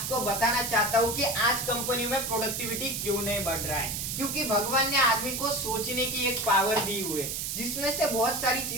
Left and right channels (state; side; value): noise; right; hiss, 3 dB below the sound